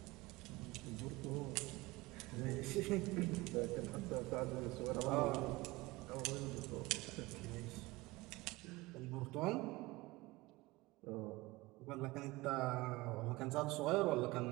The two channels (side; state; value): left; quieter; 21.1 dB